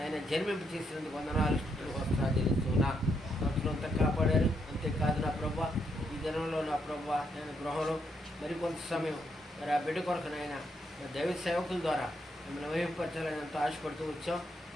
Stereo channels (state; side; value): normal; both; correlation 0.78